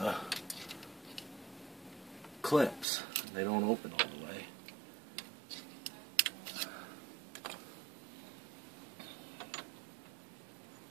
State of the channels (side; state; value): left; drops out; at 2.9 s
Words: clips. They don't open all the way.